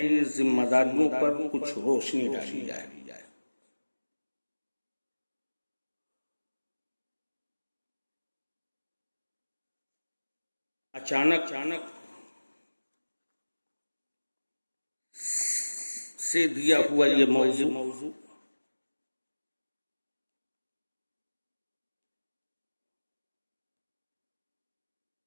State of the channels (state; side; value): inverted; both; correlation -1.00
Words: ذمہ داریوں پر کچھ روشنی ڈالی جائے۔ اچانک سے دیا ہوا یہ موضوع